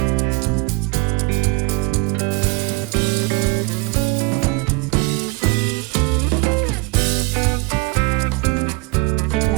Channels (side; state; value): left; quieter; 27.1 dB